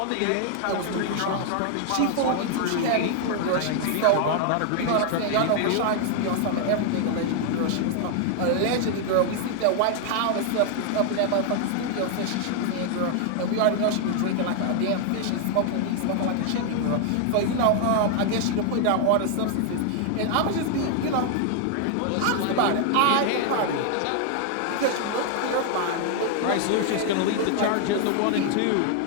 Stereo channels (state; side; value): different; both; correlation 0.00